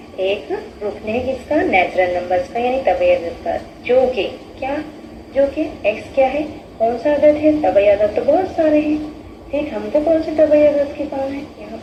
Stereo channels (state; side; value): identical; both; correlation 1.00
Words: एक रुकने है किसका, नेचुरल नंबर्स का, यानी तबई अदद का, जो कि एक्स क्या है, कौन सा अदद है, तबई अदद तो बहुत सारे हैं, ठीक, हमको कौन से तबई अदद के काम है यहाँ